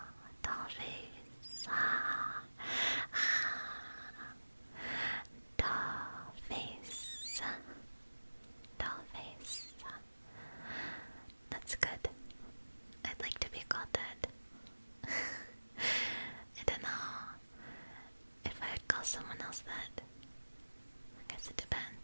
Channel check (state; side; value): inverted; both; correlation -1.00